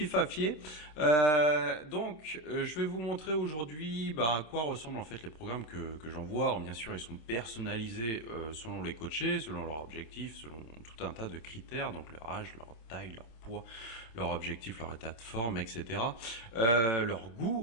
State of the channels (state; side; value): late; right; 27 ms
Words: Je vais vous montrer aujourd'hui à quoi ressemblent en fait les programmes que j'envoie. Alors, bien sûr, ils sont personnalisés selon les coachés, selon leurs objectifs, selon tout un tas de critères, donc leur âge, leur taille, leur poids, leur objectif, leur état de forme, etc. Leur